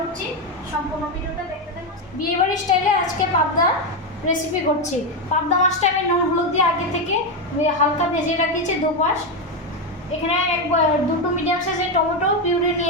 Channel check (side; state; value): both; normal; correlation 0.09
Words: সম্পূর্ণ ভিডিওটা দেখতে থাকুন। বিয়েবাড়ির স্টাইলে আজকে পাবদা রেসিপি করছি। পাবদা মাছটা আমি নুন হলুদ দিয়ে আগে থেকে হালকা ভেজে রাখিয়েছি দুপাশ। এখানে দুটো মিডিয়াম সাইজের টমেটো পিউরি